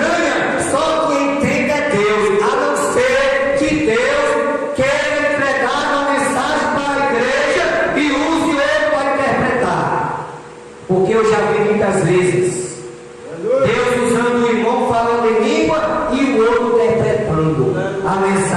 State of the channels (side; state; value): both; identical; correlation 1.00